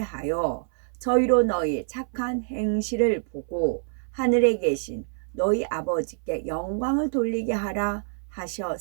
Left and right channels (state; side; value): silent; left; 60 dB below the other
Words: 저희로 너희 착한 행실을 보고 하늘에 계신 너희 아버지께 영광을 돌리게 하라